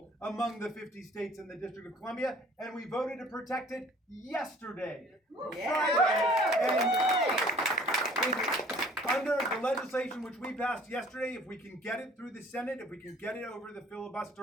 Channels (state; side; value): normal; both; correlation 0.53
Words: among the 50 states in the District of Columbia, and we voted to protect it yesterday, Friday. And under the legislation which we passed yesterday, if we can get it through the Senate, if we can get it over the